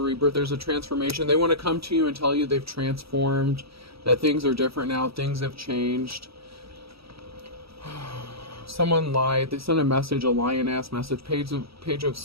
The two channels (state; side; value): late; left; 0.76 ms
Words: rebirth, there's a transformation. They want to come to you and tell you they've transformed, that things are different now, things have changed. Someone lied. They sent a message, a lion-ass message, page of